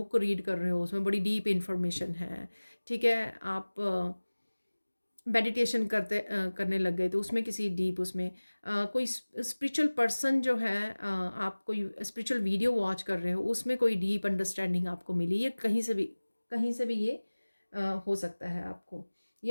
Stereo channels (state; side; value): inverted; both; correlation -1.00